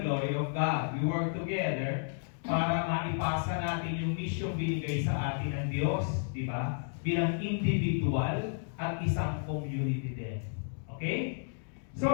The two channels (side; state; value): right; silent; digital silence